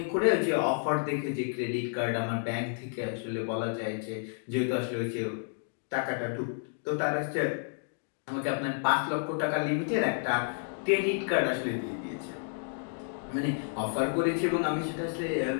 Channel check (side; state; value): right; silent; digital silence